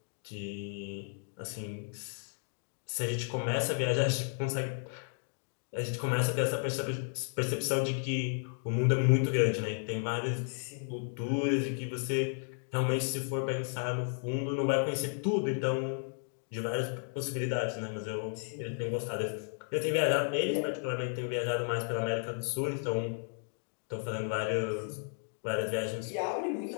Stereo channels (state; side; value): silent; right; 55 dB below the other